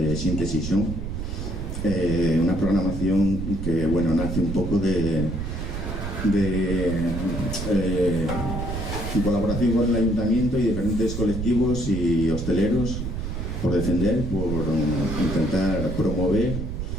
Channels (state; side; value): noise; right; rumble, 4 dB below the sound